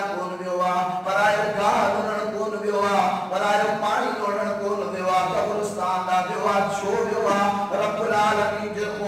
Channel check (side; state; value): both; identical; correlation 1.00